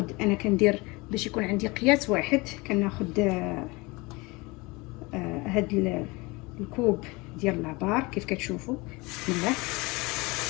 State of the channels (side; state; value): right; quieter; 24.8 dB